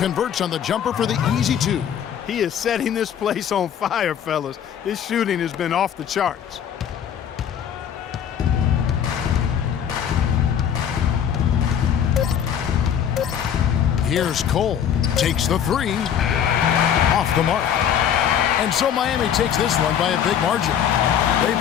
on the jumper for the easy 2. He is setting this place on fire, fellas. His shooting has been off the charts. Here's Cole. Takes the 3. Off the mark. And so Miami takes this one by a big margin. They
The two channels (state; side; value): quieter; right; 8.9 dB